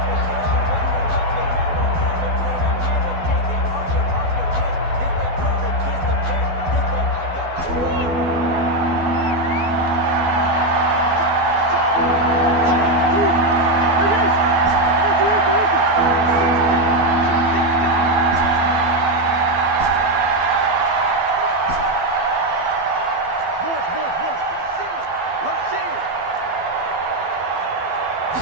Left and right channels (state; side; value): late; left; 12 ms